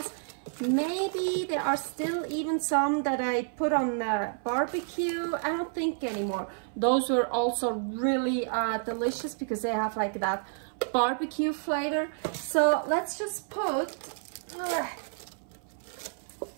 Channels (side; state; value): left; silent; 58 dB below the other